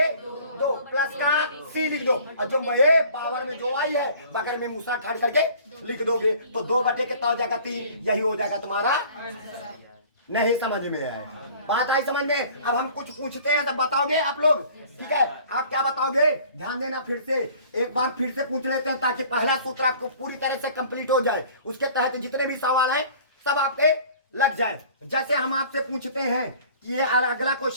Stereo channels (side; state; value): both; inverted; correlation -0.49